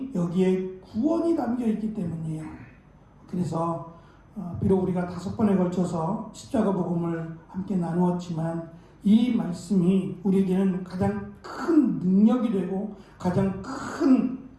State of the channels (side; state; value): both; identical; correlation 1.00